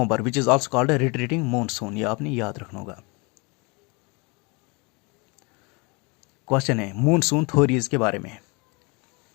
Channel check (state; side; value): quieter; right; 28.9 dB